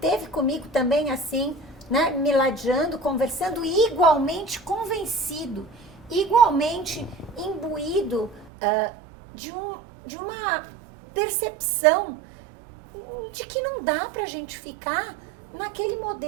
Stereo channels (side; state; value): left; drops out; at 8.5 s